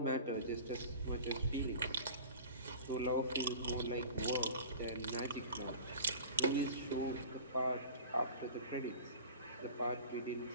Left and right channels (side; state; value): both; inverted; correlation -0.40